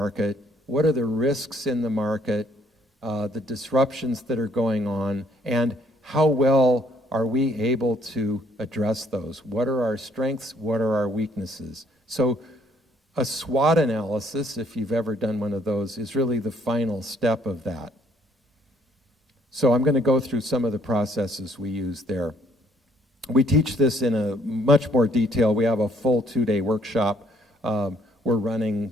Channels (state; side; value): normal; both; correlation 0.64